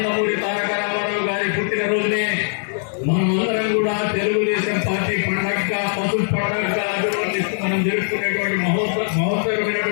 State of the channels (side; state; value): right; silent; 64 dB below the other